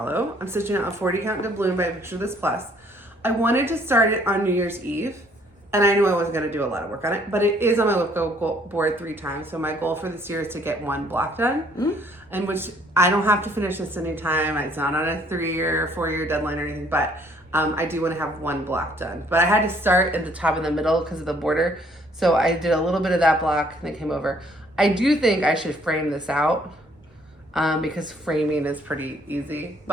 I'm stitching out a 40 count doubloon by Picture This Plus. I wanted to start it on New Year's Eve, and I knew I wasn't going to do a lot of work on it, but it is on my Whip Go board 3 times. So my goal for this year is to get 1 block done, and which I don't have to finish this anytime. It's not on a 3-year or 4-year deadline or anything, but I do want to have 1 block done. But I had to start at the top and the middle because of the border. So I did a little bit of that block and then came over. I do think I should frame this out because framing is pretty easy,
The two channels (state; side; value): normal; both; correlation 0.63